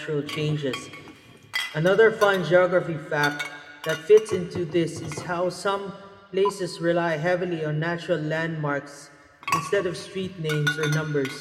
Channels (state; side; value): identical; both; correlation 1.00